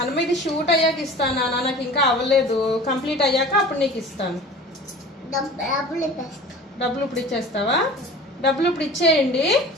ఇది షూట్ అయ్యాక ఇస్తానా నాకు ఇంకా అవ్వలేదు కంప్లీట్ అయ్యాక అప్పుడు నీకు ఇస్తాను డబ్బులు ఇప్పుడు ఇచ్చేస్తావా డబ్బులు ఇప్పుడు ఇచ్చేయండి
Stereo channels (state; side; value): normal; both; correlation 0.40